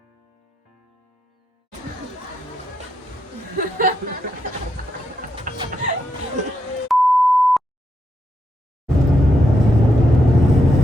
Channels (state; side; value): normal; both; correlation 0.82